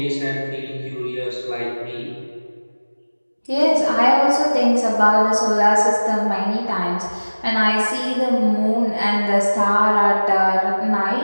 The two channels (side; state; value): both; inverted; correlation -1.00